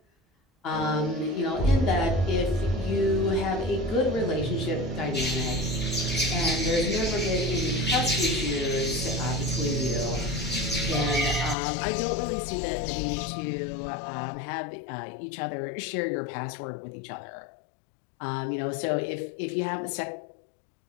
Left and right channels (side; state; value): right; drops out; at 11.6 s